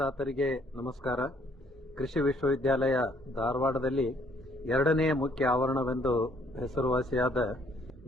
ನಮಸ್ಕಾರ. ಕೃಷಿ ವಿಶ್ವವಿದ್ಯಾಲಯ ಧಾರವಾಡದಲ್ಲಿ ಎರಡನೇ ಮುಖ್ಯ ಆವರಣವೆಂದು ಹೆಸರುವಾಸಿಯಾದ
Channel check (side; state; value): both; normal; correlation 0.64